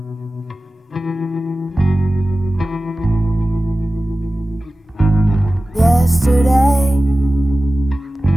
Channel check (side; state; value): both; normal; correlation 0.96